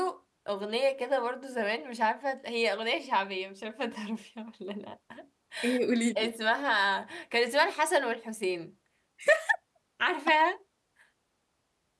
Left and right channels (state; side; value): identical; both; correlation 1.00